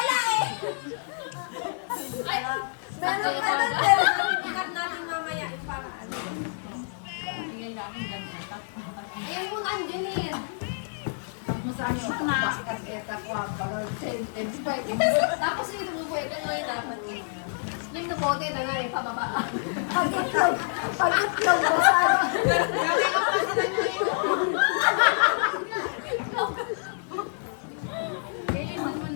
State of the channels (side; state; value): right; silent; 59 dB below the other